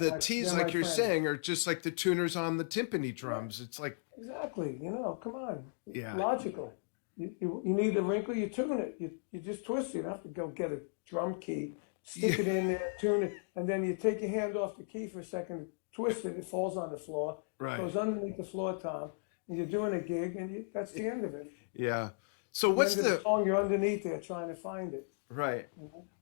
T's, like you're saying, are just like the tuners on the timpani drums. It's like... Exactly. Come on. Yeah. Logical. You need a wrinkle, you tune it. You just twist it. You don't have to go get a drum key, stick it in there, tune it, and then you take your hand off the key for a second, twist it, it falls on the floor. Right. It goes underneath the floor tom, and you're doing a gig, and that's the end of it. Yeah. So what's the song? You're underneath there trying to find it. Right. Mm-hmm.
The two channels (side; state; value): right; silent; digital silence